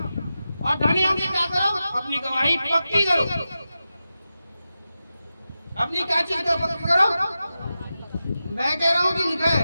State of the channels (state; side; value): inverted; both; correlation -0.92